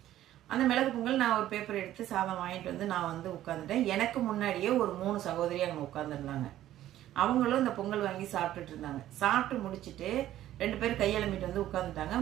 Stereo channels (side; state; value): left; quieter; 13.2 dB